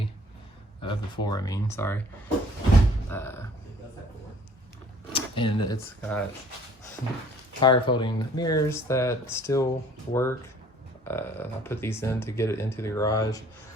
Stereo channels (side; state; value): both; normal; correlation 0.55